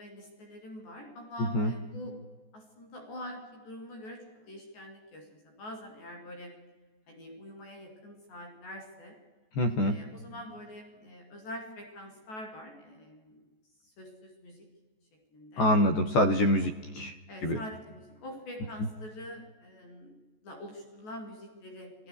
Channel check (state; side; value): late; right; 14 ms